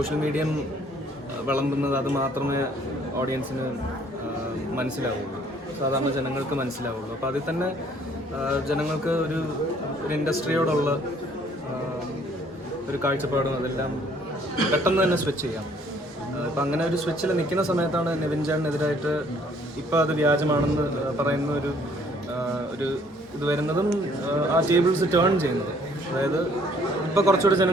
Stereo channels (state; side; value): normal; both; correlation 0.61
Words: മീഡിയം വിളമ്പുന്നത് അത് മാത്രമേ ഓഡിയൻസിന് മനസ്സിലാവുള്ളൂ, സാധാരണ ജനങ്ങൾക്ക് മനസ്സിലാവുള്ളൂ. അപ്പോൾ അതിൽ തന്നെ ജനങ്ങൾക്ക് ഒരു ഇൻഡസ്ട്രിയോടുള്ള ഒരു കാഴ്ചപ്പാടും അതെല്ലാം പെട്ടെന്ന് തന്നെ സ്വിച്ച് ചെയ്യാം. ഇപ്പം അങ്ങനെ ഒരു സ്വിച്ചിൽ നിൽക്കുന്ന സമയത്താണ് നിവിൻ ചേട്ടനെതിരായിട്ട് ഇപ്പോൾ അത് വ്യാജമാണെന്ന് പറയുന്ന ഒരു ഇത് വരുന്നതും ആ ടേബിൾസ് ടേൺ ചെയ്യുന്നത്. അതായത് ഇപ്പോൾ കുറച്ചുകൂടി